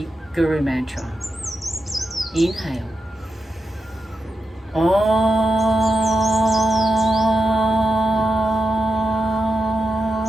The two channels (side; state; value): both; normal; correlation 0.89